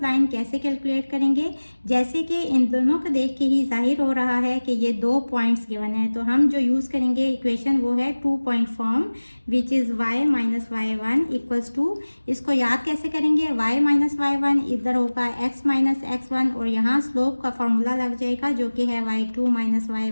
लाइन कैसे कैलकुलेट करेंगे? जैसे कि इन दोनों को देख के ही जाहिर हो रहा है कि ये दो पॉइंट्स गिवन है, तो हम जो यूज़ करेंगे इक्वेशन वो है 2 point form which is y minus y1 equals to, इसको याद कैसे करेंगे? y माइनस y1 इधर होगा x माइनस x1 और यहाँ स्लोप का फॉर्मूला लग जाएगा जो कि है y2 minus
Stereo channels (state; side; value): inverted; both; correlation -1.00